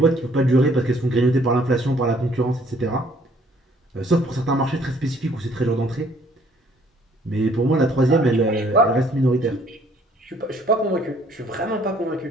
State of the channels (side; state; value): both; normal; correlation 0.61